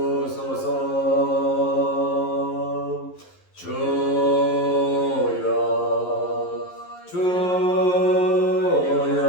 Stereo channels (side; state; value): right; late; 11 ms